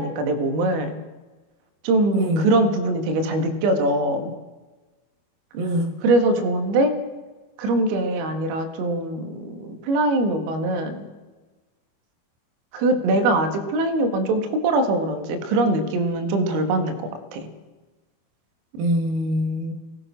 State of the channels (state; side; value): late; left; 25 ms